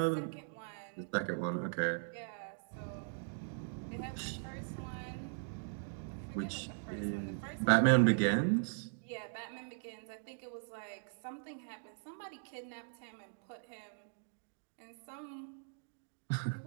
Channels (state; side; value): silent; left; digital silence